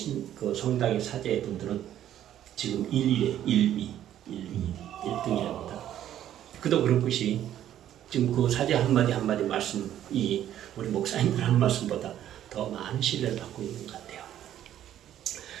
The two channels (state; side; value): quieter; left; 11.5 dB